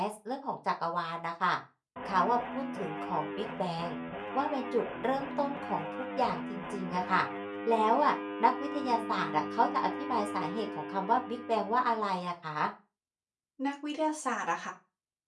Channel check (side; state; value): both; identical; correlation 1.00